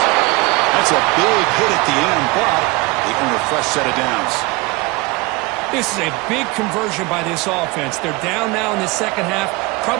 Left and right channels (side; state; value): left; quieter; 24.4 dB